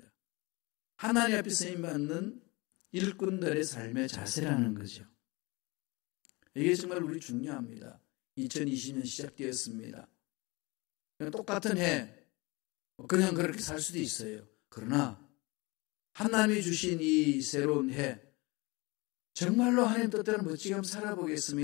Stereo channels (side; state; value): right; quieter; 25.2 dB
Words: 하나님 앞에 쓰임받는 일꾼들의 삶의 자세라는 거죠. 이게 정말 우리 중요합니다. 2020년 시작되었습니다. 똑같은 해 그냥 그렇게 살 수도 있어요. 그러나 하나님이 주신 이 새로운 해, 정말로 하나님 뜻대로 멋지게 한번